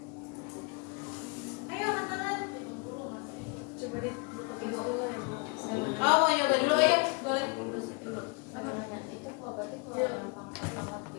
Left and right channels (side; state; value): right; quieter; 31.6 dB